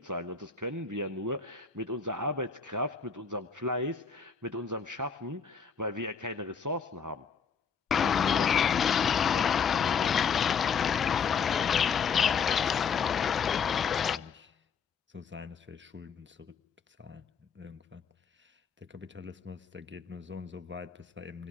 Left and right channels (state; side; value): quieter; right; 6.3 dB